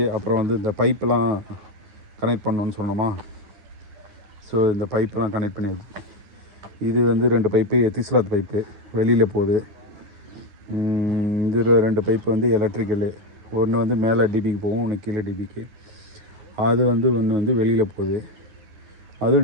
அப்புறம் வந்து இந்த பைப்பெலாம் கனெக்ட் பண்ணணுன்னு சொன்னோமா. ஸோ இந்த பைப்பெலாம் கனெக்ட் பண்ணி இது வந்து 2 பைப்பு எத்திஸ்லாத் பைப்பு வெளியில் போகுது. இதில் 2 பைப்பு வந்து எலக்ட்ரிக்கலு. ஒன்று வந்து மேலே டிபிக்கு போகும், ஒன்று கீழே டிபிக்கு. அது வந்து ஒன்று வந்து வெளியில் போகுது,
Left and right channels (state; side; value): late; left; 9.8 ms